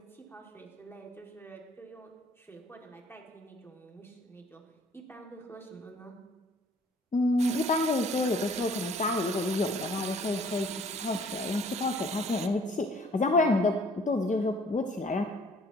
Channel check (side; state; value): both; normal; correlation 0.56